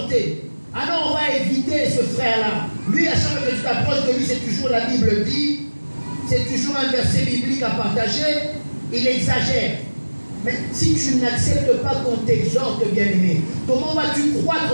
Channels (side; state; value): both; inverted; correlation -1.00